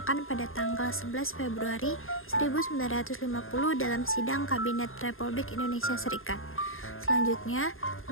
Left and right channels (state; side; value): late; right; 0.60 ms